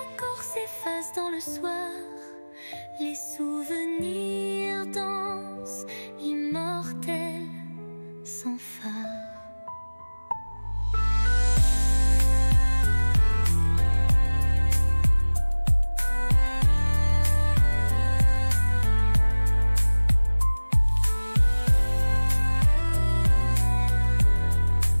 s'efface dans le soir, les souvenirs dansent, immortels, sans phare.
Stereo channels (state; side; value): inverted; both; correlation -1.00